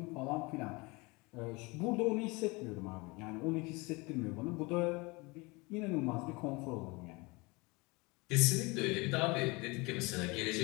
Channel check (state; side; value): quieter; right; 25.9 dB